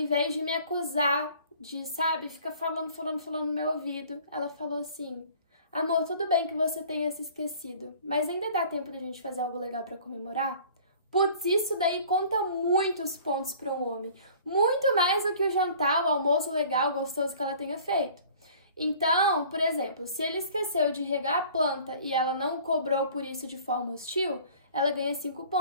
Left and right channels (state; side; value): inverted; both; correlation -0.50